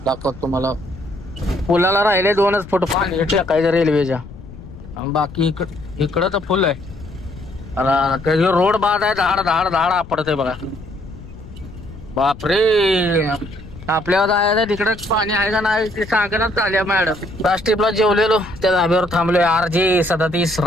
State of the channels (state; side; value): noise; left; rumble, 16 dB below the sound